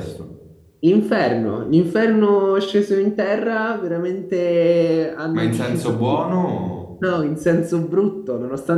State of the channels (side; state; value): both; identical; correlation 1.00